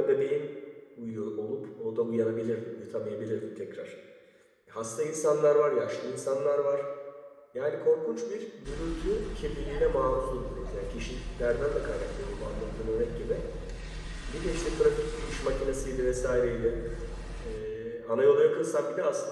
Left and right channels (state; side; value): identical; both; correlation 1.00